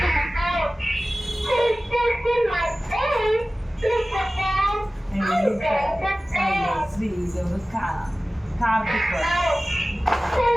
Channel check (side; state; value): both; normal; correlation 0.97